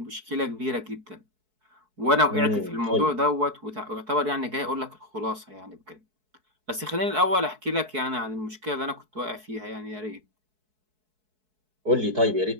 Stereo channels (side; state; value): left; late; 4.6 ms